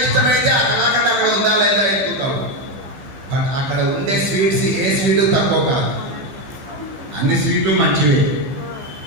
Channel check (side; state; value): left; late; 15 ms